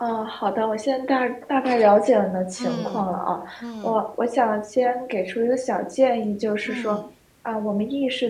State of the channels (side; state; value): both; identical; correlation 1.00